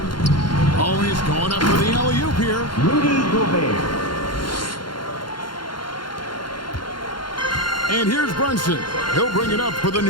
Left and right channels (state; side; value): late; right; 0.72 ms